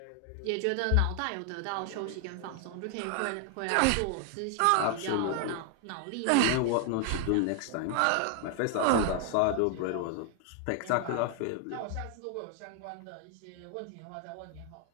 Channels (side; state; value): both; different; correlation 0.00